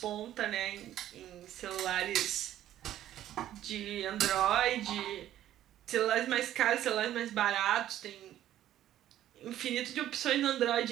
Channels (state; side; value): quieter; left; 12.5 dB